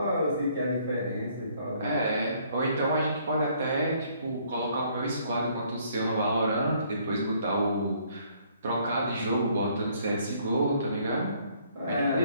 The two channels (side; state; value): both; inverted; correlation -0.64